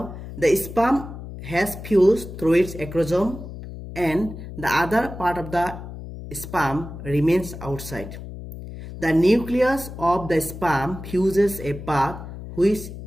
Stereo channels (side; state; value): left; noise; hum, 11 dB below the sound